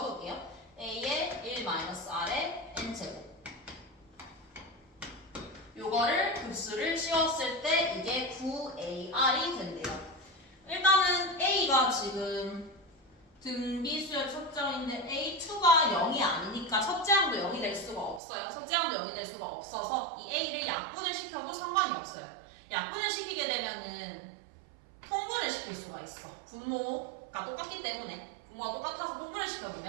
A의 1-R의 N제곱 요거를 급수를 씌웠을 때 이게 9AR이 된대요. 일단은 A가 지금 등비수열 첫째항인데 A2가 0이 아니니까 첫째 항도 0이 될 수가 없어요. 첫째 항도 0이 될 수가 없어서 이 A를 약분을 시켜도 상관이 없어요. 약분을 시키게 되면은 통분을 시킬 수가 있어. 분모가 똑같기 때문에 분모가 똑같아서 통분을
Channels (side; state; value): left; drops out; at 18.2 s